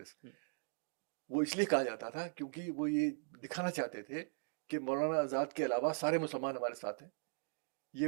وہ اس لیے کہا جاتا تھا کیونکہ وہ یہ دکھانا چاہتے تھے کہ مولانا آزاد کے علاوہ سارے مسلمان ہمارے ساتھ ہیں. یہ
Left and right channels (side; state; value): left; silent; digital silence